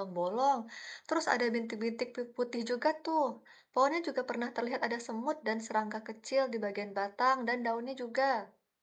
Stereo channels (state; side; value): identical; both; correlation 1.00